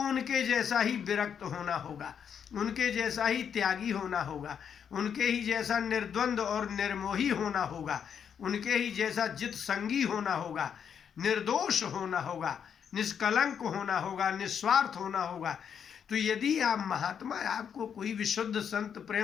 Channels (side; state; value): right; quieter; 7.7 dB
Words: उनके जैसा ही विरक्त होना होगा, उनके जैसा ही त्यागी होना होगा, उनके ही जैसा निर्द्वंद और निर्मोही होना होगा, उनके ही जैसा जित संगी होना होगा, निर्दोष होना होगा, निष्कलंक होना होगा, निस्वार्थ होना होगा। तो यदि आप महात्मा, आपको कोई विशुद्ध संत